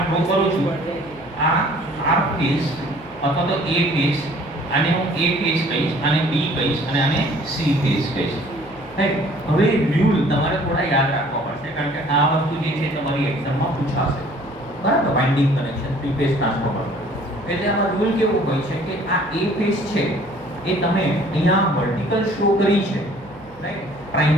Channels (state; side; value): noise; right; hum, 24 dB below the sound